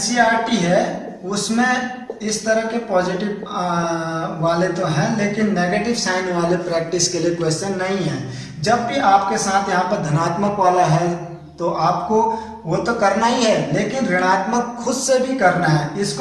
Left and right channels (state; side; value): identical; both; correlation 1.00